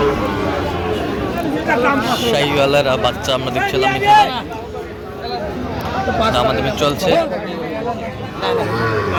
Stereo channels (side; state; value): both; identical; correlation 1.00